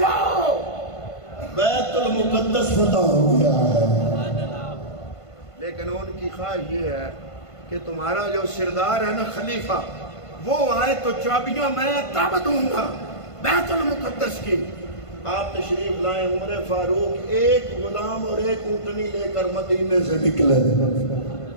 جاؤ بیت المقدس فتح ہو گیا ہے، لیکن ان کی خواہش یہ ہے کہ تمہارا جو سردار ہے نا خلیفہ، وہ آئے تو چابیاں میں تب دوں گا بیت المقدس کی۔ آپ تشریف لائیں، عمر فاروق ایک غلام اور ایک اونٹنی لے کر مدینے سے نکلے،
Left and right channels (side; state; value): right; late; 1.5 ms